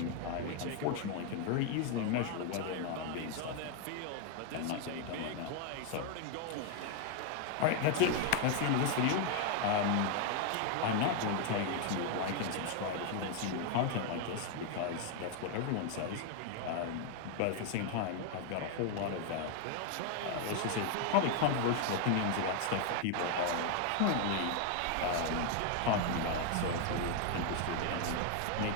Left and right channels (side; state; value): both; different; correlation 0.00